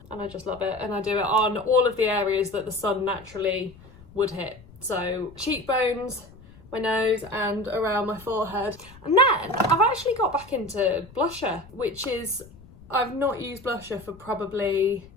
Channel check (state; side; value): noise; left; rumble, 22 dB below the sound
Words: and I just love it. And I do it on all of the areas that the sun naturally would hit. So cheekbones, my nose, and around my forehead. And then I've actually got back into blusher, which is, I've not used blusher for probably